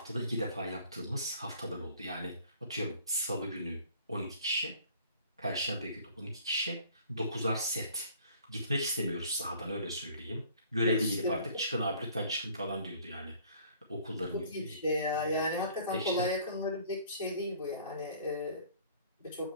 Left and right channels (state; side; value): inverted; both; correlation -0.53